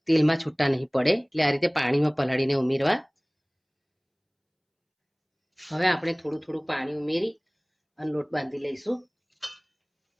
તેલમાં છૂટા નહીં પડે, એટલે આ રીતે પાણીમાં પલાળીને ઉમેરવા। હવે આપણે થોડું થોડું પાણી ઉમેરી અને લોટ બાંધી લઈશું।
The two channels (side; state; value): both; identical; correlation 1.00